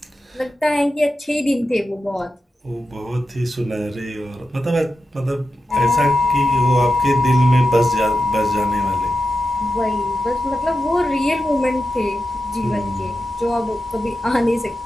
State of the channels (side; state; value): both; normal; correlation 0.90